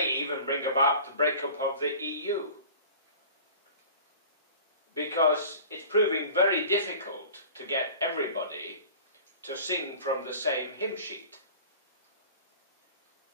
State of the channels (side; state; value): both; inverted; correlation -0.42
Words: even bring about the breakup of the EU. Because it's proving very difficult to get everybody to sing from the same hymn sheet.